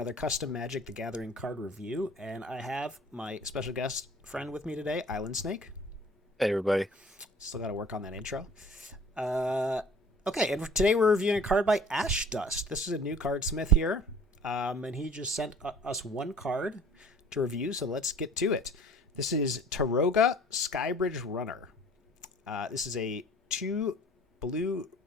custom Magic the Gathering card review, and I have my special guest friend with me today, Islandsnake. Hey everybody. Still got to work on that intro. Uh, okay, and today we're reviewing a card by Ashdust. This is a new cardsmith here, and he just sent us one card to review, so let's get to it. This is Taroga Skybridge Runner. This is a 2 blue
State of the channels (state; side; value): normal; both; correlation 0.50